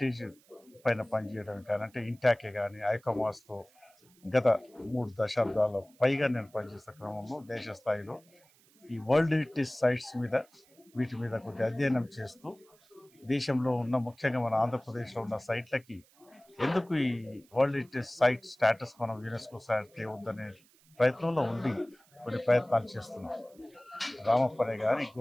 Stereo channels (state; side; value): noise; right; hiss, 30 dB below the sound